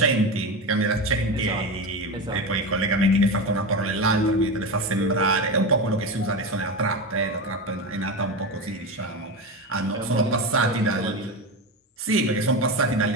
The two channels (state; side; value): normal; both; correlation 0.19